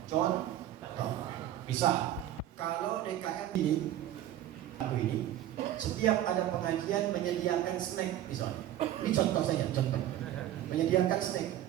Contoh. Misal, kalau DKM ini, setiap ada pengajian menyediakan snack, misalnya. Ini contoh saja, contoh. Menyediakan snack,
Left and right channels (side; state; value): left; quieter; 12.4 dB